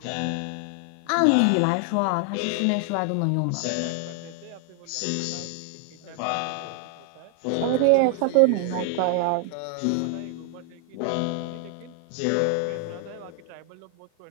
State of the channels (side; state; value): both; different; correlation 0.00